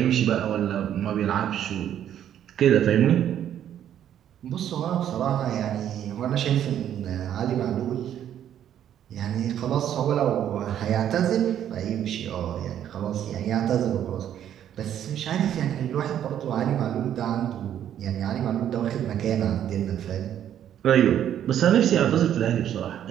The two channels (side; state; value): left; quieter; 10.3 dB